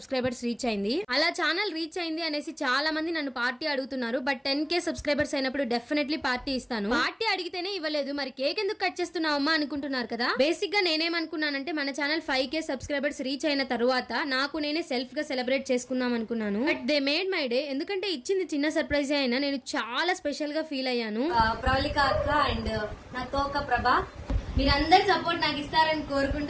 రీచ్ అయింది. అలా ఛానల్ రీచ్ అయింది అనేసి చాలా మంది నన్ను పార్టీ అడుగుతున్నారు. బట్ 10K సబ్స్క్రైబర్స్ అయినప్పుడు డెఫినెట్లీ పార్టీ ఇస్తాను. పార్టీ అడిగితేనే ఇవ్వలేదు, మరి కేక్ ఎందుకు కట్ చేస్తున్నావు అమ్మా అనుకుంటున్నారు కదా. బేసిక్ గా నేనేమనుకున్నానంటే మన ఛానల్ 5K సబ్స్క్రైబర్స్ రీచ్ అయిన తర్వాత నాకు నేనే సెల్ఫ్ గా సెలబ్రేట్ చేసుకుందాం అనుకున్నాను. But they made my day. ఎందుకంటే ఇచ్చింది చిన్న సర్ప్రైజ్ అయినా నేను చాలా స్పెషల్ గా ఫీల్ అయ్యాను. ప్రవళిక అక్క అండ్ నా తోక ప్రభ, మీరందరు సపోర్ట్ నాకు ఇస్తారని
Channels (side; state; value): both; identical; correlation 1.00